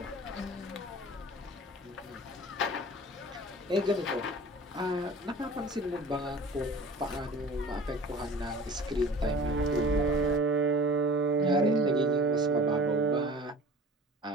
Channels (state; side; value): normal; both; correlation 0.42